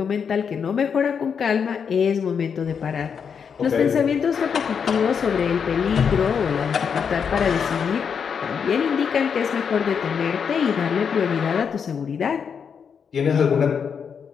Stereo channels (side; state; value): right; quieter; 6.7 dB